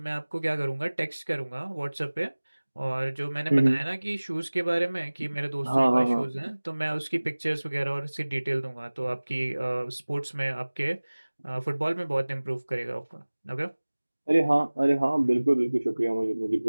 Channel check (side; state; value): both; inverted; correlation -1.00